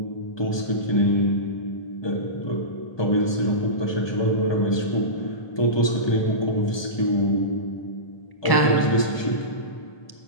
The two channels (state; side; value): late; right; 1.2 ms